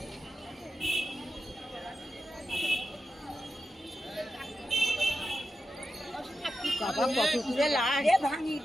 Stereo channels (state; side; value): normal; both; correlation 0.89